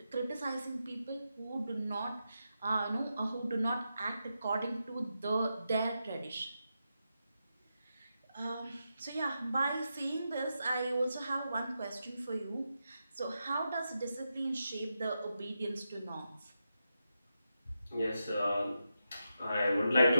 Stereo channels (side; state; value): both; inverted; correlation -0.87